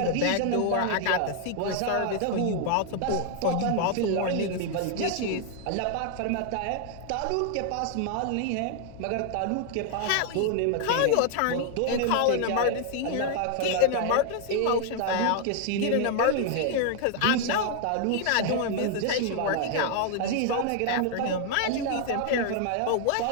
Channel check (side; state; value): both; different; correlation 0.00